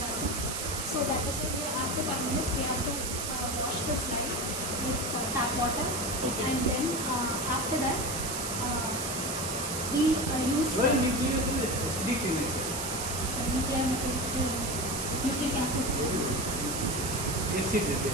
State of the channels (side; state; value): right; noise; hiss, 3 dB below the sound